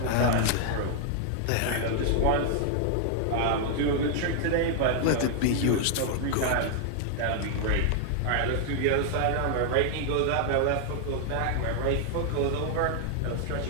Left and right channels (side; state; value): both; different; correlation 0.00